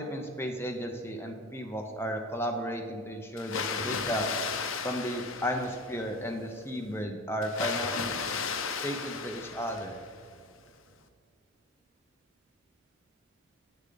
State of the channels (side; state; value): both; normal; correlation 0.32